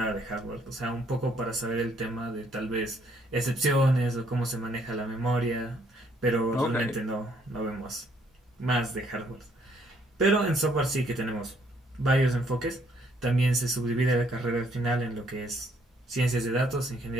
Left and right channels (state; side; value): normal; both; correlation 0.67